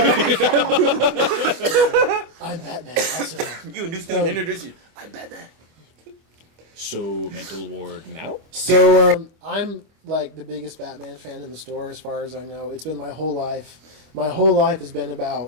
I'm Batman. Pass it on. You, a new student, introduce you. I'm Batman. So, mental ward now? So I'm like the biggest Batman fan in the store, as far as I know. It's been my whole life. My whole life has been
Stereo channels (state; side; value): late; left; 25 ms